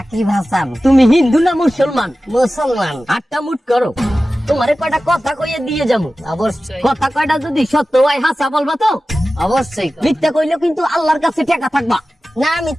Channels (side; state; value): both; normal; correlation 0.95